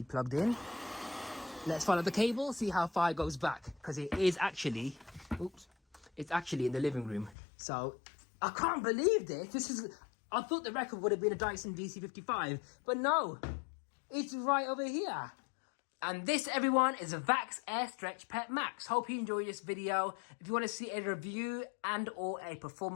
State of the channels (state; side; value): drops out; right; at 7.4 s